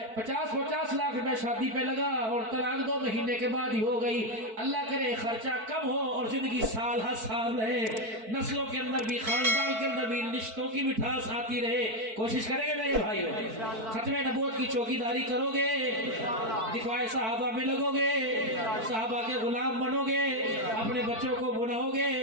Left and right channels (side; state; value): left; late; 4.5 ms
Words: 50-50 लाख रुपए शादी पे लगा और तलाक 2 महीने के बाद ही हो गई। अल्लाह करे खर्चा कम हो और जिंदगी साल हर साल रहे, नस्लों के अंदर भी, खानदान के अंदर भी रिश्तों की मिठास आती रहे। कोशिश करेंगे मेरे भाई, खत्मे नबूवत की चौकीदारी करोगे, दिखवाए साहबा में लगोगे, साहबा के गुलाम बनोगे, अपने बच्चों को बुलाओगे।